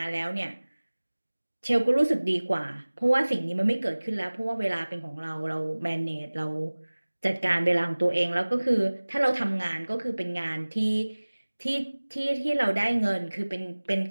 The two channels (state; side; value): inverted; both; correlation -1.00